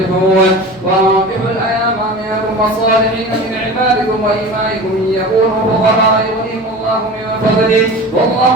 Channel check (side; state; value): both; normal; correlation 0.34